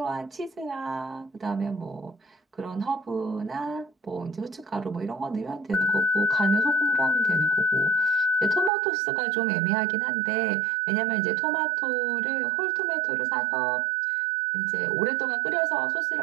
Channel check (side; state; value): left; drops out; at 8.7 s